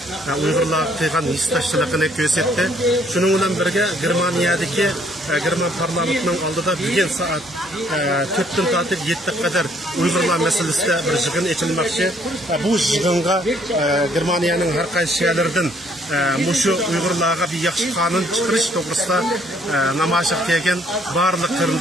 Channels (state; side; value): normal; both; correlation 0.64